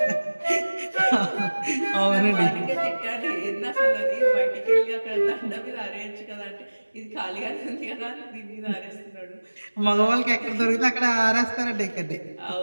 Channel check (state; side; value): inverted; both; correlation -1.00